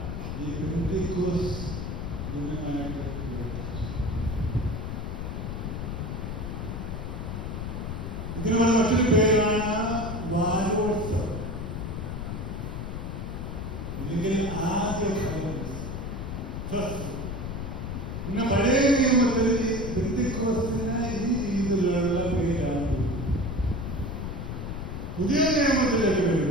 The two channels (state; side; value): noise; left; rumble, 5 dB below the sound